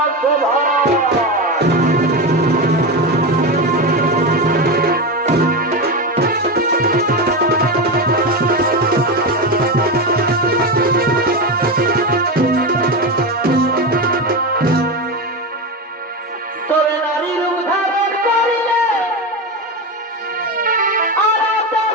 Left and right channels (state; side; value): normal; both; correlation 0.17